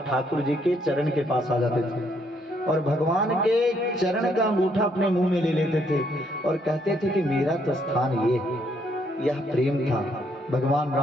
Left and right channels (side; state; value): both; normal; correlation 0.71